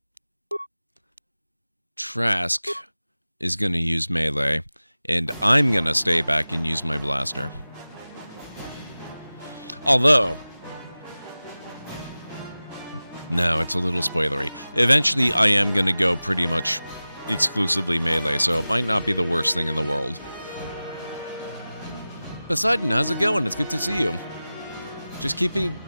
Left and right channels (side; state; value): both; inverted; correlation -0.96